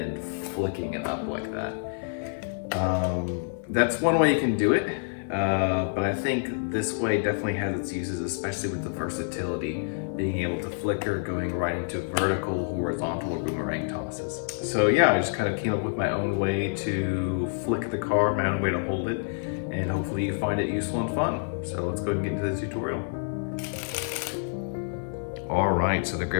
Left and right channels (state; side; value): silent; right; 56 dB below the other